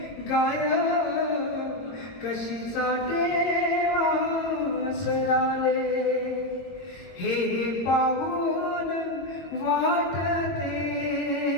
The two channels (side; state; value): right; late; 22 ms